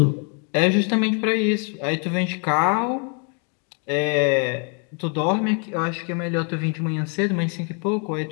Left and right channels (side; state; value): right; quieter; 38.2 dB